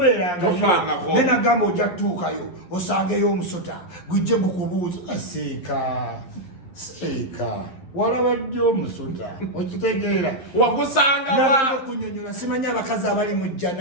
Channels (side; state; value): right; late; 11 ms